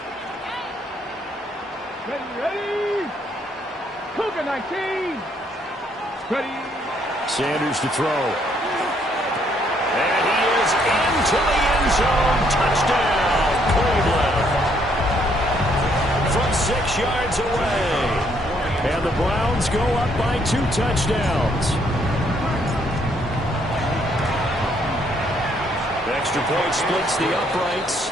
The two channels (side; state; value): both; normal; correlation 0.69